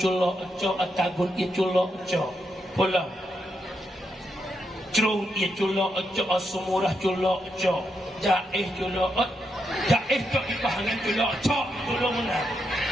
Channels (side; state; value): both; normal; correlation 0.82